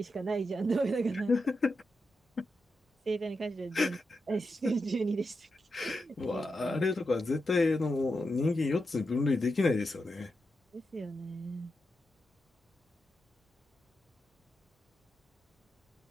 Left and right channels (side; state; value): both; normal; correlation 0.87